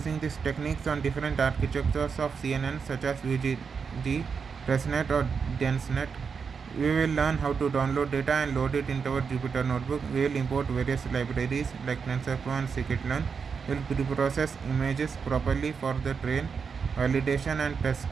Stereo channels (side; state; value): left; quieter; 5.9 dB